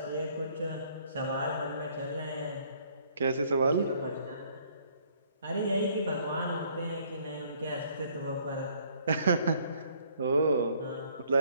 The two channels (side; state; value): both; inverted; correlation -0.62